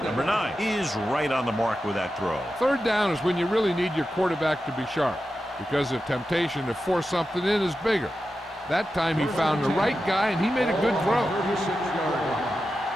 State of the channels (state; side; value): normal; both; correlation 0.91